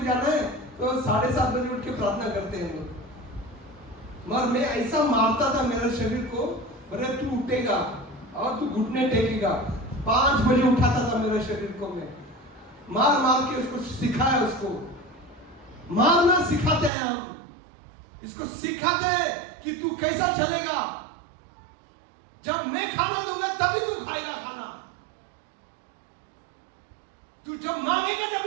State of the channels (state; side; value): drops out; left; at 16.9 s